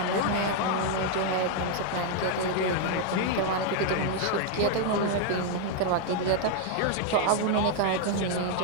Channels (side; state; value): both; different; correlation 0.00